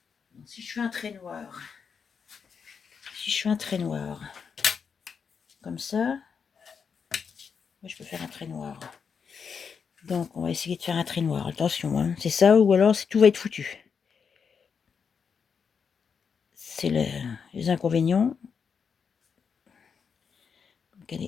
Si je fais un trait noir. Si je fais un trait noir. Comme ça. Moi, je peux faire un trait noir. Donc, on va essayer de faire un trait noir. Attention, hein. C'est ça ou alors tout va être foutu. C'est les inconvénients. Donc,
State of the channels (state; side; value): quieter; right; 6.3 dB